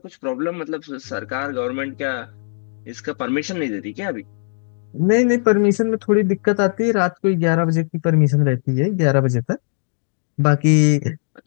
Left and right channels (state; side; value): silent; right; digital silence